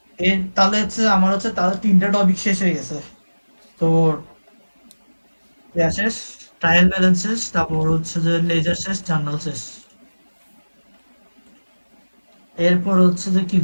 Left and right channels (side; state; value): both; inverted; correlation -1.00